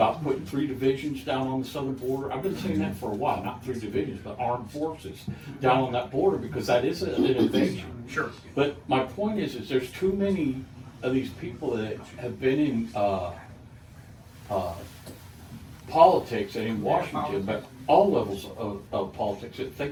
putting 3 divisions down on the southern border. I've been saying that for a while, not 3 divisions, but armed forces down on that border, because that is an invasion. Sure. But my point is there's too many of these people that have been in politics and in Washington, but all levels of politics, that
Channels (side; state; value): both; identical; correlation 1.00